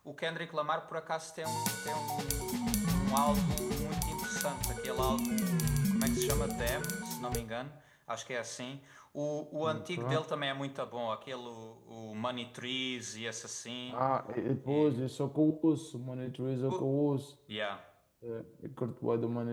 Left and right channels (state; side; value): identical; both; correlation 1.00